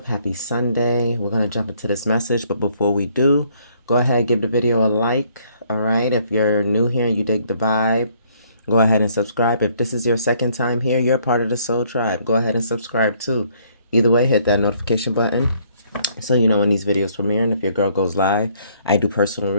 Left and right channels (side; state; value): both; inverted; correlation -0.65